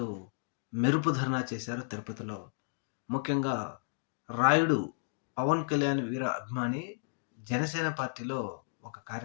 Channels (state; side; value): silent; right; digital silence